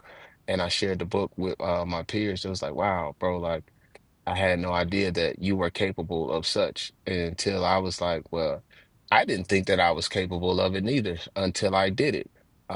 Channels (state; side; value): identical; both; correlation 1.00